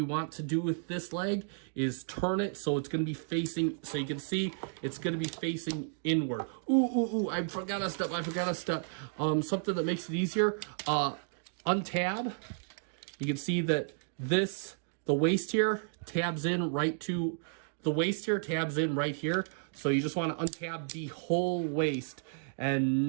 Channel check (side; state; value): left; silent; digital silence